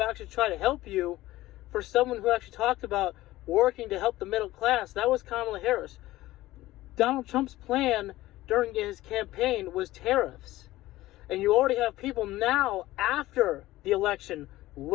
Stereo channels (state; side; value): quieter; right; 16.8 dB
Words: actually try to help you, for someone who actually talked about working to help the middle class, that was Kamala Harris. Donald Trump's plan during his campaign was tariffs. And you already have people now, after the election,